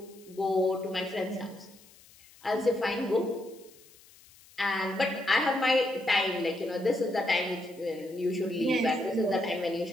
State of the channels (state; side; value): noise; left; hiss, 25 dB below the sound